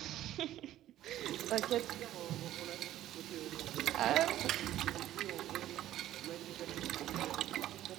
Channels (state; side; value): quieter; left; 13.3 dB